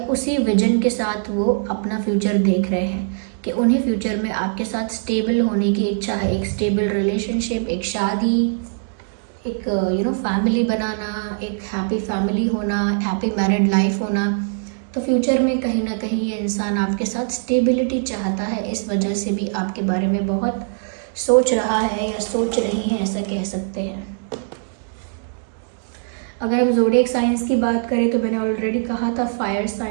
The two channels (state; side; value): silent; left; digital silence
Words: उसी विजन के साथ वो अपना फ्यूचर देख रहे हैं कि उन्हें फ्यूचर में आपके साथ स्टेबल होने की इच्छा है। एक स्टेबल रिलेशनशिप, एक शादी, एक फैमिली बनाना, एक हैप्पी फैमिली होना, हैप्पी मैरिड लाइफ होना। तो फ्यूचर में कहीं ना कहीं ये इंसान आपके साथ स्टेबिलिटी चाहता है, इस वजह से भी आपके बारे में बहुत सोच रहा है या सोच रही है, ऐसा कह सकते हैं। अगर हम ज़ोडिएक साइंस की बात करें तो मैंने ऑलरेडी कहा था फायर